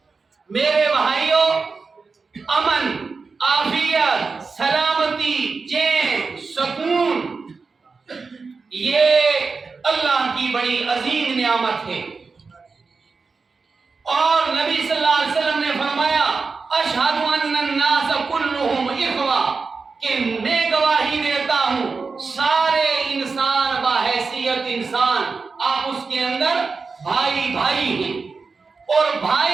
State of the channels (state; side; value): quieter; left; 4.5 dB